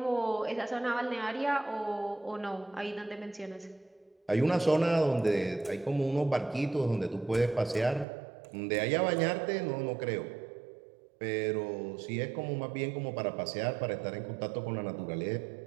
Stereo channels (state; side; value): drops out; left; at 8.1 s